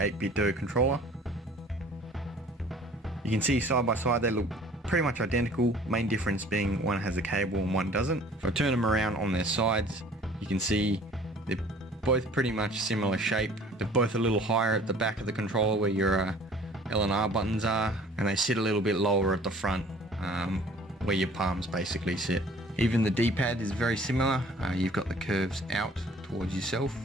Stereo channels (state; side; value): normal; both; correlation 0.52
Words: controller. You can see side by side they look pretty much identical, main difference being one has a cable and one doesn't. If I turn them around on their sides, you can see they're both pretty much similar shape. They're both a little higher at the back of the controller where your L and R buttons are, and they sit a little bit lower at the front, where your palms basically sit. Even the D-pad is very similar. You've got the curves out towards yourself